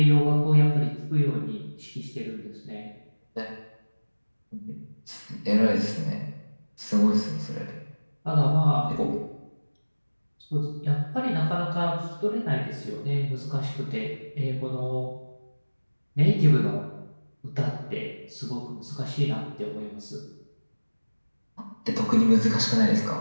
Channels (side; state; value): both; inverted; correlation -1.00